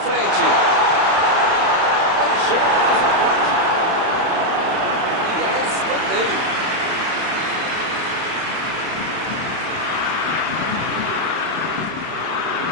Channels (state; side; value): late; left; 31 ms